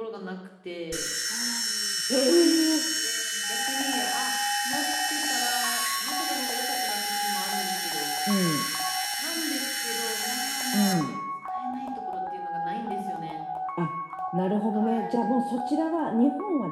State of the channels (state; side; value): identical; both; correlation 1.00